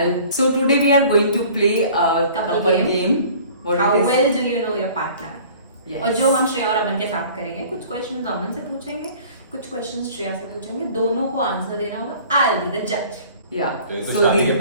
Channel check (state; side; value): inverted; both; correlation -0.48